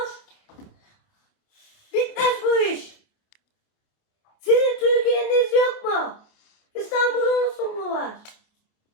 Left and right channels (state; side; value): late; right; 28 ms